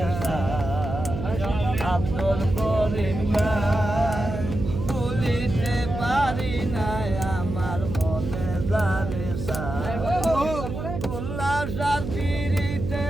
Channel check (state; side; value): noise; right; hum, 6 dB below the sound